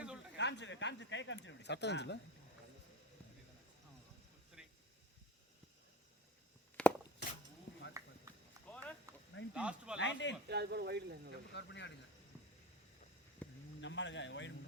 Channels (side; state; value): both; normal; correlation 0.31